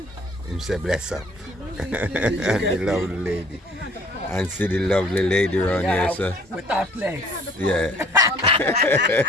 Him say bless up. And the lovely lady. And see the lovely lady around here, so. With our place. Yeah.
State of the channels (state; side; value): normal; both; correlation 0.56